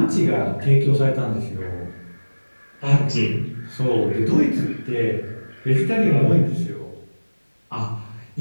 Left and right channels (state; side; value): inverted; both; correlation -1.00